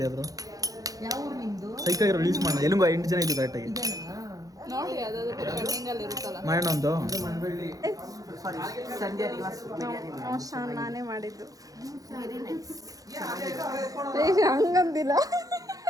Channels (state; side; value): late; left; 0.17 ms